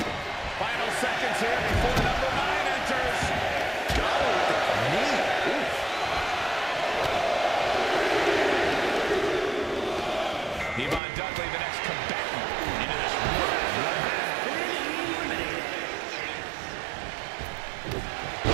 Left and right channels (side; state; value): left; drops out; at 11.0 s